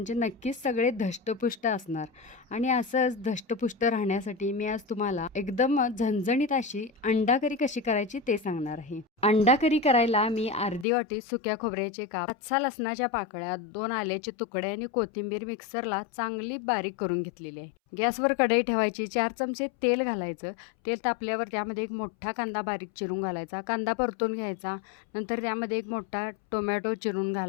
नक्कीच सगळे धष्टपुष्ट असणार. आणि असंच धष्टपुष्ट राहण्यासाठी मी आज तुम्हाला एकदम झणझणीत अशी अंडा करी कशी करायची ते सांगणार आहे. अंडा करी करायला मी अर्धी वाटी सुक्या खोबऱ्याचे काप, 5-6 लसणाच्या पाकळ्या, 2 आल्याचे तुकडे आणि कोथिंबीर मिक्सरला चांगली बारीक करून घेतलेली आहे. गॅसवर कढई ठेवायची, 4 चमचे तेल घालायचं. तेल तापल्यावर त्यामध्ये एक मोठा कांदा बारीक चिरून घालायचा. कांदा परतून घ्यायचा. नंतर त्यामध्ये एक मोठा टोमॅटो चिरून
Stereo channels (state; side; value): drops out; right; at 10.9 s